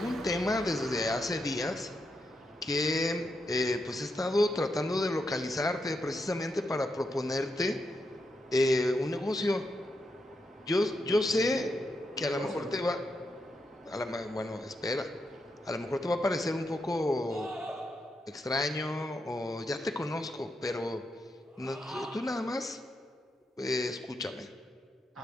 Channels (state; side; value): normal; both; correlation 0.83